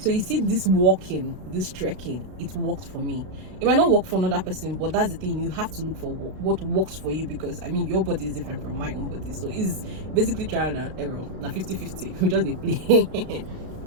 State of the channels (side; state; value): left; late; 32 ms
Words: you see, this walking, this trekking, it worked for me. It might not work for another person, but that's the thing, you have to look for what works for you, because I mean, your body is different from my own body. So it's basically trial and error. Now 50-50, we just they play.